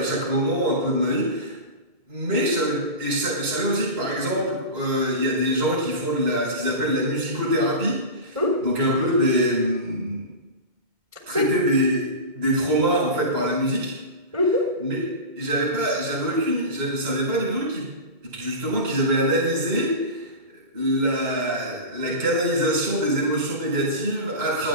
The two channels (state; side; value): late; left; 2.1 ms